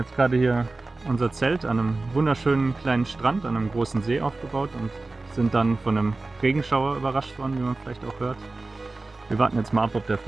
gerade hier unser Zelt an einem wunderschönen kleinen Strand, an einem großen See aufgebaut und sind dann von einem Regenschauer überrascht worden, wie man vielleicht auch hört. Wir warten jetzt mal ab, ob der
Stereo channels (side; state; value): left; quieter; 3.3 dB